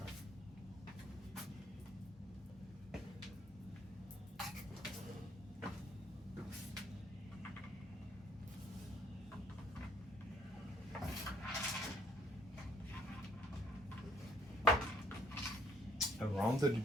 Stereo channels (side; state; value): both; normal; correlation 0.64